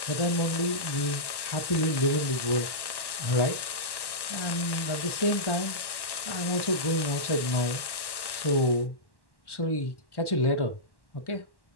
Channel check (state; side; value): late; right; 1.1 ms